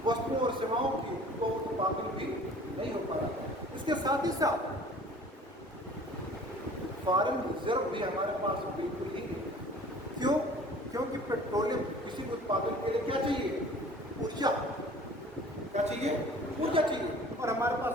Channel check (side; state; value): both; normal; correlation 0.48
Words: वस्तुओं और सेवाओं की, वो उत्पादन भी नहीं हो पा रहा। इसके साथ ही साथ फॉरेन रिजर्व भी हमारे पास बिल्कुल ही नहीं। क्यों, क्योंकि पेट्रोलियम किसी भी उत्पादन के लिए क्या चाहिए, ऊर्जा। क्या चाहिए, ऊर्जा चाहिए, और हमारे पास